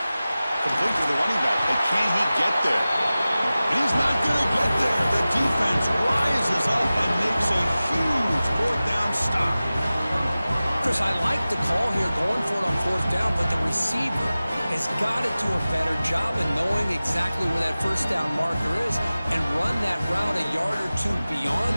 Complete to the running back. But can he get there? And he's not going to get there. The defense rises up and makes a huge fourth down stop. Chris, I like the call here going for it on fourth down, but the receiver has got to do a better job of knowing exactly where that first down marker is and run that route a yard or 2 beyond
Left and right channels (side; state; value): both; inverted; correlation -0.97